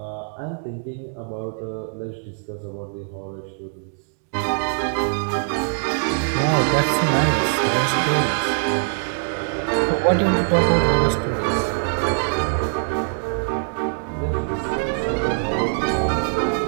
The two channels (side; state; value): left; silent; digital silence